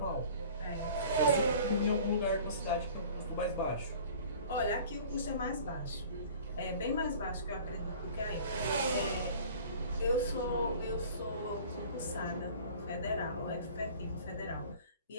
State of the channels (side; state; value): both; inverted; correlation -0.45